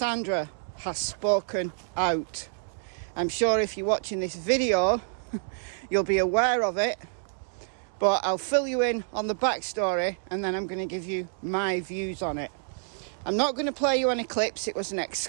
has spoken out. I'm sure if you're watching this video you'll be aware of it, but I'll fill you in on the backstory and then I'm going to give you my views on it. I'm not going to play you any clips, it was an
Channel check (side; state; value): left; silent; digital silence